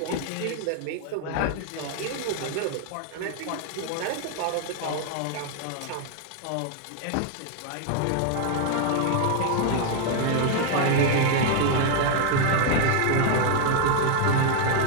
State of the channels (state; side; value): different; both; correlation 0.00